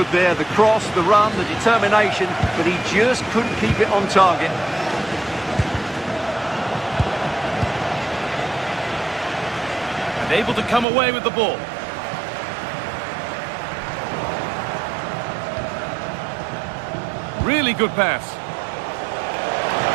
there. The cross, the run, the determination, but he just couldn't keep it on target. And able to come away with the ball. Really good pass.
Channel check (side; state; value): left; drops out; at 10.9 s